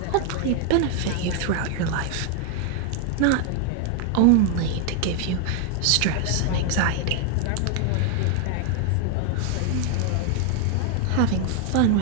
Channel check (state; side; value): different; both; correlation 0.00